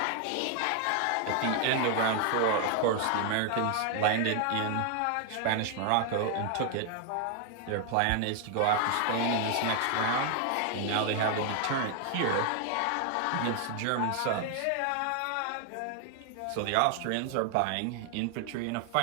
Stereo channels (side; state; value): both; different; correlation 0.00